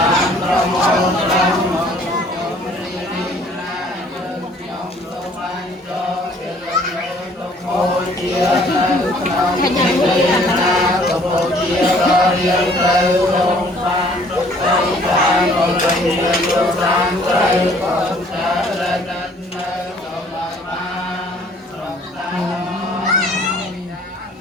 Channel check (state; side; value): normal; both; correlation 0.58